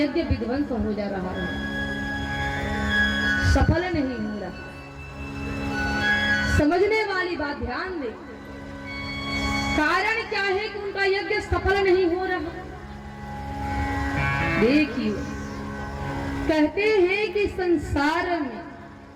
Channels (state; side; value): identical; both; correlation 1.00